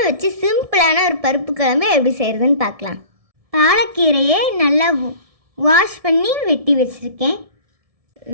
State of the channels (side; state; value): left; late; 1.7 ms